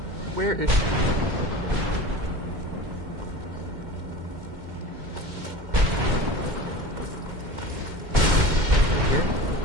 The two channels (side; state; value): left; late; 2.1 ms